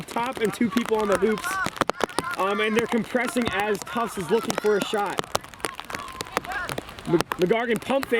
top and 2 people on the hoops. And they're compressing as Tufts is looking for a shot. McGargan pump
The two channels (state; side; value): identical; both; correlation 1.00